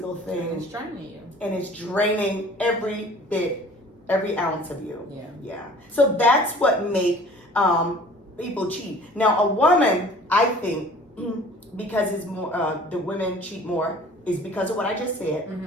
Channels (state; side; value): normal; both; correlation 0.48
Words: thing. It's draining you. And it's draining every bit, every ounce of you. Yeah. So that's what make people cheat. Now, a woman, I think, because it's more, the women cheat more, is because of what I just said,